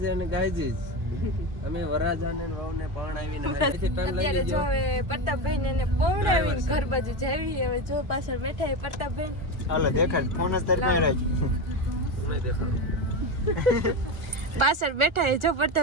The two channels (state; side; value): late; left; 1.4 ms